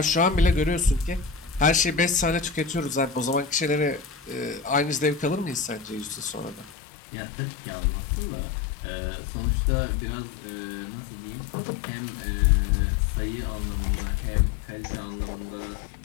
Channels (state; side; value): drops out; right; at 6.7 s